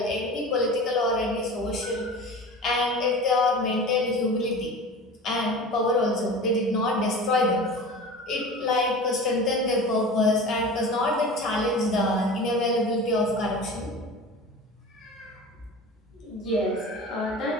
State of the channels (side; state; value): both; normal; correlation 0.35